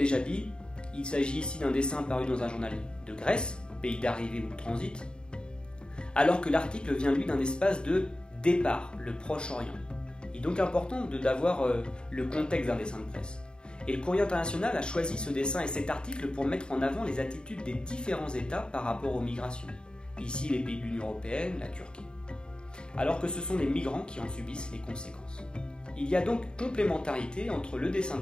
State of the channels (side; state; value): right; late; 0.050 ms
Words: dit, il s'agit ici d'un dessin paru dans un journal de Grèce, pays d'arrivée ou de transit, alors que l'article vient lui d'un espace de départ, le Proche-Orient. Il est donc important d'avoir le contexte d'un dessin de presse. Et le Courrier international a choisi ce dessin et cet article pour mettre en avant les attitudes des différents États par rapport aux migrations. Ici, les pays de l'Union européenne, la Turquie. Alors que ce sont les migrants qui en subissent les conséquences. Il y a donc complémentarité entre le dessin de